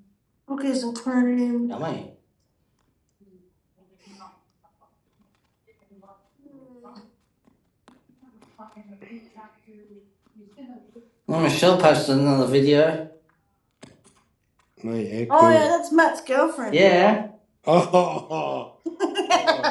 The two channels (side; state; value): both; identical; correlation 1.00